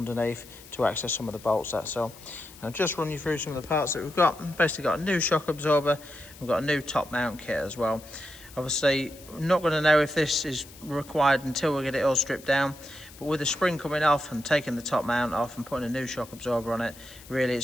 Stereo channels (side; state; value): left; noise; hiss, 20 dB below the sound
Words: to access some of the bolts, that's all. I'll just run you through some of the parts that we've got. Basically got a new shock absorber, we've got a new top mount kit as well. Obviously, I'm not going to know if this is required until we get it all stripped down, but with the spring coming off and taking the top mount off and putting a new shock absorber on it, really